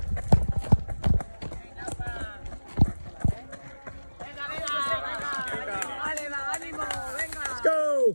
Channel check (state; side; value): inverted; both; correlation -1.00